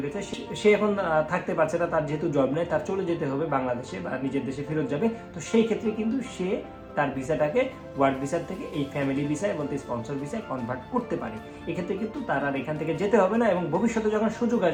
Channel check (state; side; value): identical; both; correlation 1.00